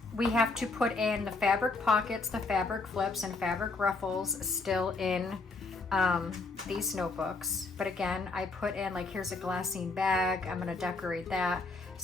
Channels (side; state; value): right; quieter; 3.7 dB